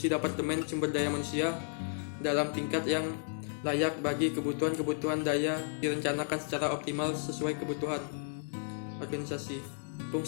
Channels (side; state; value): right; silent; digital silence